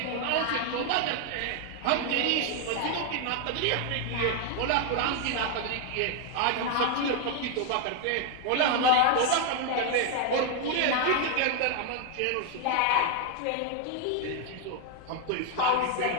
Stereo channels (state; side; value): different; both; correlation 0.01